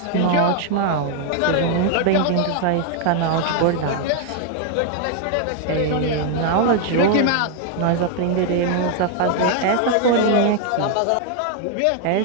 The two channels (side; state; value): both; different; correlation 0.00